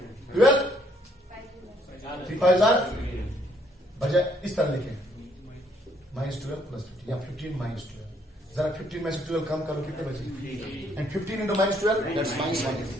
12 3 5 बजाय इस तरह लिखें, माइनस 12 प्लस 15 या 15 माइनस 12। जरा 15 में से 12 कम करो, कितने बचे, and 15 into minus 12 that's minus 1।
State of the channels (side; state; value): both; normal; correlation 0.67